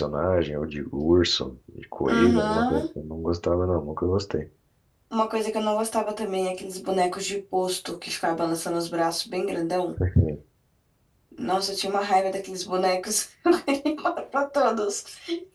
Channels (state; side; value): identical; both; correlation 1.00